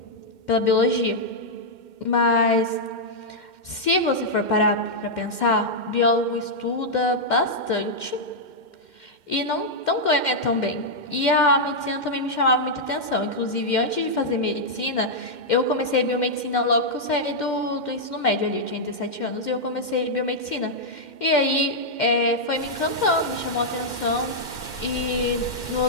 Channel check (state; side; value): late; right; 2.1 ms